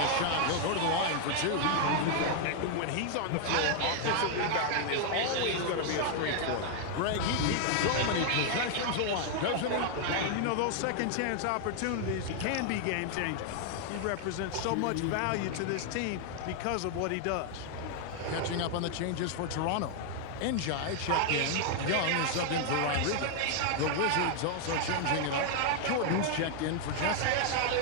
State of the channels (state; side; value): different; both; correlation 0.00